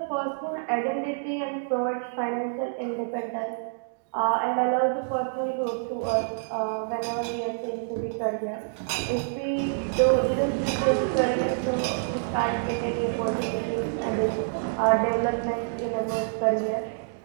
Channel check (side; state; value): left; silent; digital silence